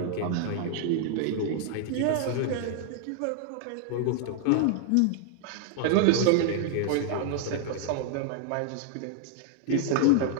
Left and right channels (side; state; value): both; different; correlation 0.00